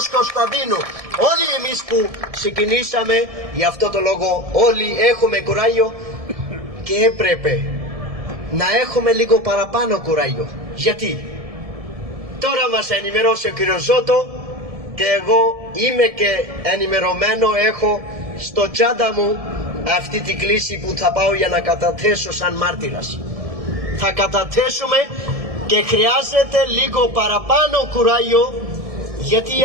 Κωνσταντίνου, όλοι εμείς που ξεκινήσαμε, για αυτό το λόγο όλοι έχουμε κουράγιο και έπρεπε να έχουμε λίγο παραπάνω κουράγιο. Γιατί τώρα μας ενημερώσει ο κύριος Ζώτο και εγώ είμαι και ενημερωμένο, έχω στο τσάντα μου αυτή την κλίση που θα πάω για να καταθέσω σαν μάρτυρας. Θα καταθέσουμε και χρειάζεται λίγο παραπάνω κουράγιο, γιατί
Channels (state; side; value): late; left; 1.7 ms